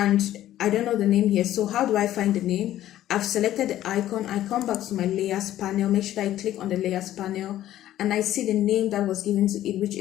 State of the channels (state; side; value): quieter; right; 13.1 dB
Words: I don't know the name here. So how do I find the name? I've selected the icon. I come back to my layers panel, make sure I click on the layers panel, and I see the name that was given to it, which